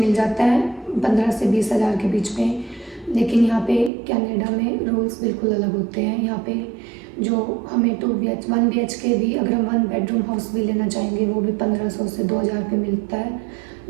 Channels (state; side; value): drops out; left; at 3.9 s